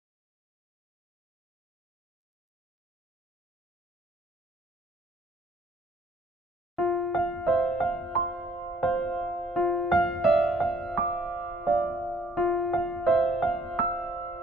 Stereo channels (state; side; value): normal; both; correlation 0.61